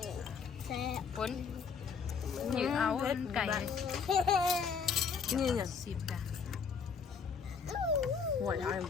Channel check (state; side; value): quieter; right; 6.0 dB